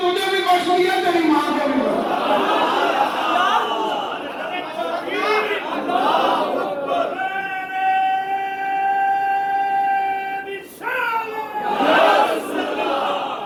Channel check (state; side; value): identical; both; correlation 1.00